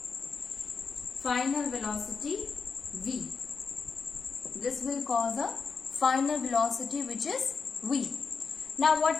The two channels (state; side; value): quieter; right; 5.2 dB